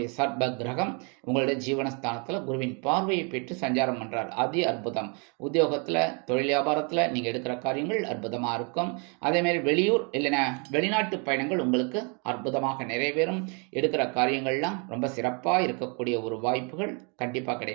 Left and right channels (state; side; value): quieter; left; 35.3 dB